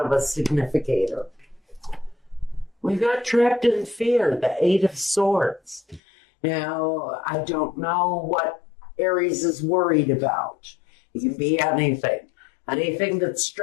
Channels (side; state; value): right; drops out; at 6.0 s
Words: a significator. We got trapped in fear, the Eight of Swords. Now, I don't know what Aries is worried about. It can be anything. Anything that